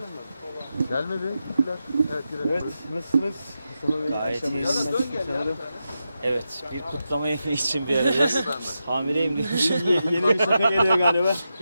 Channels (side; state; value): both; inverted; correlation -0.89